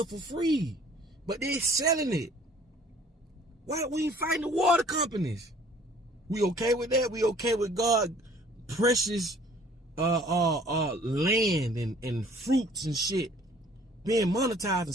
for free, but they're selling it. Why we ain't fighting the water companies? We okay with that? We okay with God precious land and fruits and shit being monetized and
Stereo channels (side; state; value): both; normal; correlation 0.55